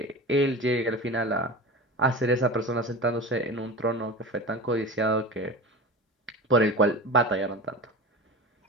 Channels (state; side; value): normal; both; correlation 0.31